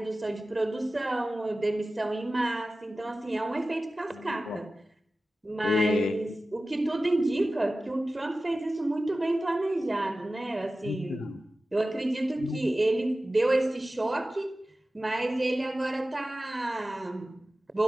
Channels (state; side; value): normal; both; correlation 0.95